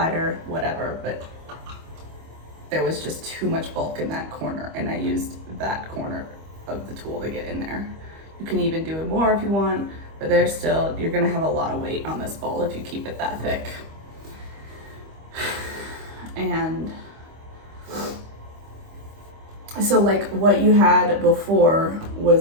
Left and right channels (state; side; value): late; left; 25 ms